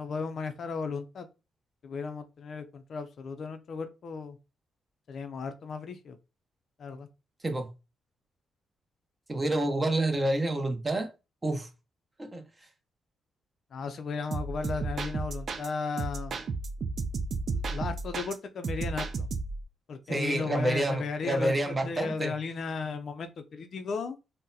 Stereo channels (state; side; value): normal; both; correlation 0.84